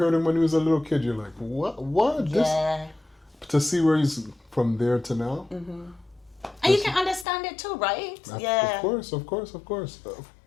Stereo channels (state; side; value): drops out; right; at 7.2 s